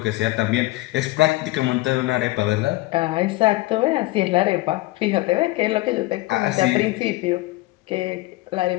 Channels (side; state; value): right; quieter; 19.8 dB